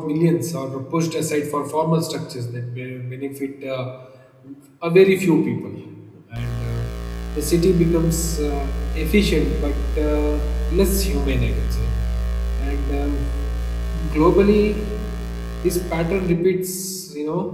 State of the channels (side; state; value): both; identical; correlation 1.00